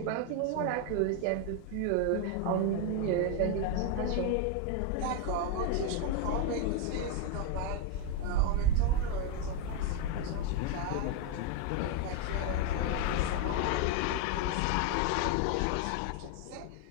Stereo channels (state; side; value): different; both; correlation 0.01